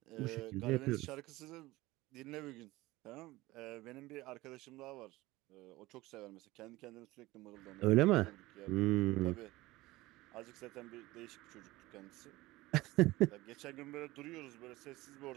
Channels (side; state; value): left; quieter; 19.3 dB